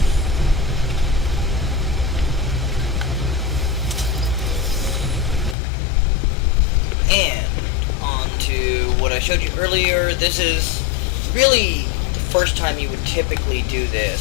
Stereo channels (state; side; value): drops out; right; at 5.6 s